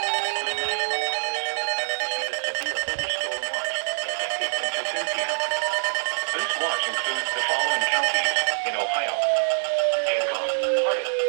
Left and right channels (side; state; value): left; silent; digital silence